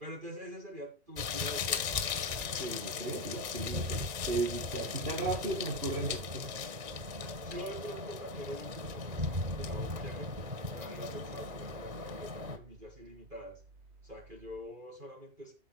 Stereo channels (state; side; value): late; left; 2.0 ms